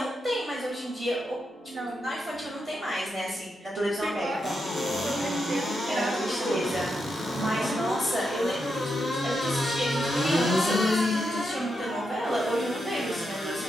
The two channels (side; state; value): both; normal; correlation 0.84